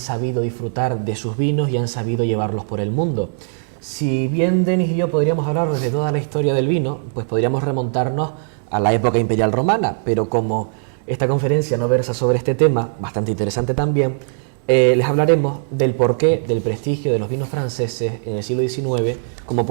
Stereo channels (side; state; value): left; silent; digital silence